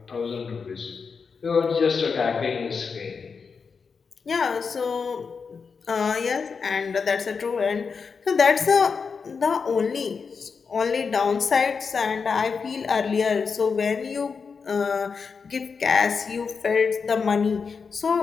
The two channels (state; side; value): quieter; right; 5.4 dB